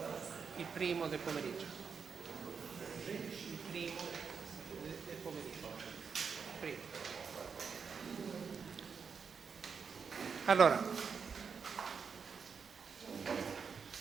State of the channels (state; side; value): quieter; left; 6.0 dB